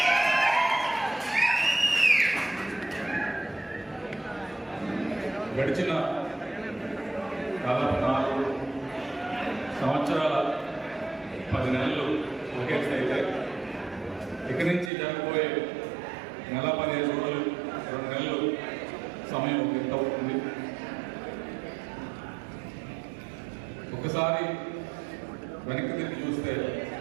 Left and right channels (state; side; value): drops out; left; at 14.9 s